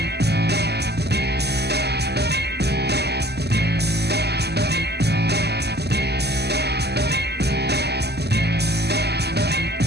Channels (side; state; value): left; late; 0.48 ms